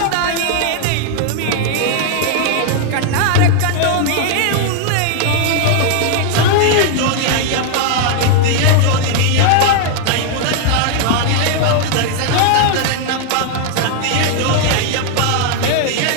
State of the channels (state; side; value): different; both; correlation 0.00